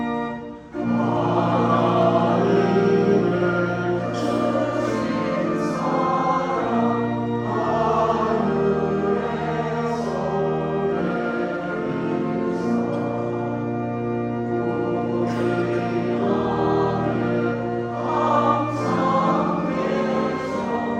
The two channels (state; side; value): identical; both; correlation 1.00